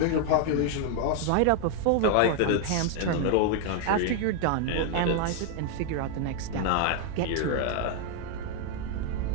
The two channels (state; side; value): different; both; correlation 0.00